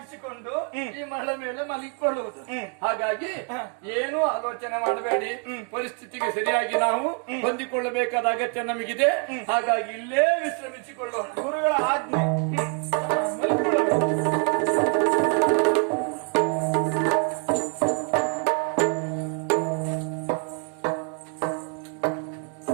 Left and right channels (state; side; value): quieter; left; 35.7 dB